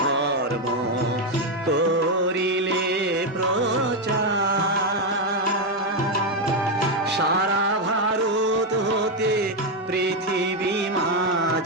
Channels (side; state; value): both; normal; correlation 0.05